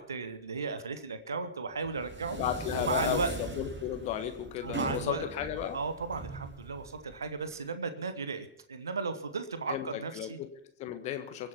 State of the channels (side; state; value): both; inverted; correlation -0.30